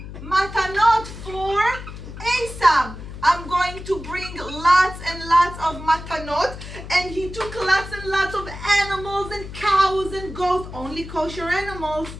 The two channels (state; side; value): noise; left; hum, 12 dB below the sound